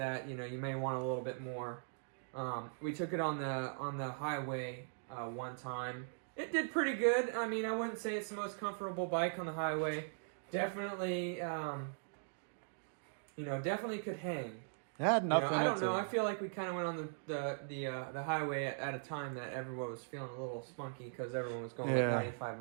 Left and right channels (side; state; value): left; silent; digital silence